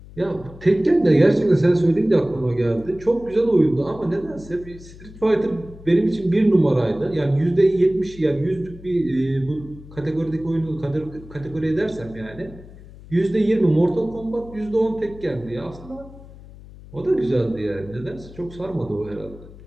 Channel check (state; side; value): noise; left; hum, 18 dB below the sound